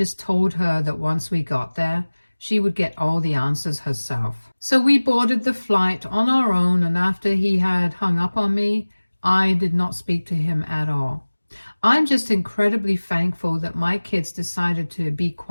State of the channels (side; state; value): both; inverted; correlation -1.00